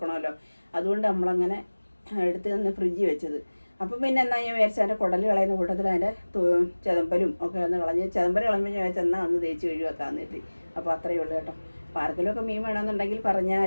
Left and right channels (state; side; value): inverted; both; correlation -1.00